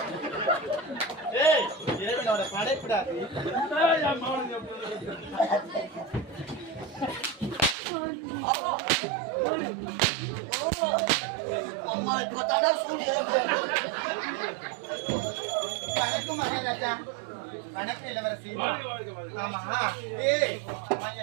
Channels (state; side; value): drops out; left; at 7.8 s